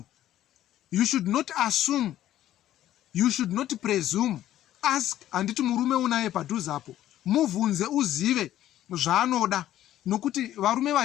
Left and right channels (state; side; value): quieter; right; 12.8 dB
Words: You should not assume, you should not presume. Ask. Handiti murume unaye padhuzapo, muvhunze, uzive zvaanoda, nokuti varume